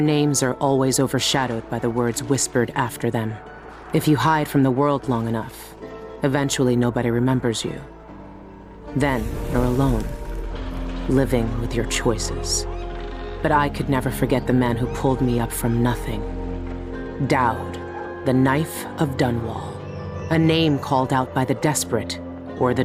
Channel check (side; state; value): both; identical; correlation 1.00